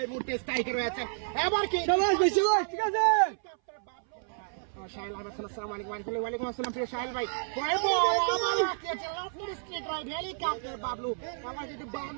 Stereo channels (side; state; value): left; silent; 58 dB below the other